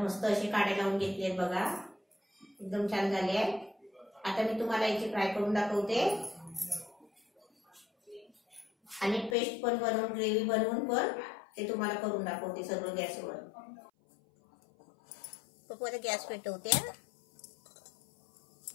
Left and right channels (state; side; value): drops out; right; at 9.3 s